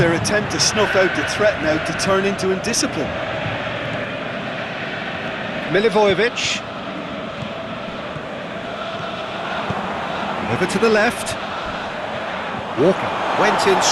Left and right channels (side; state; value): both; identical; correlation 1.00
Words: attempt to snuff out the threat now to turn into indiscipline. Milivojevic. Over to the left. Walker went in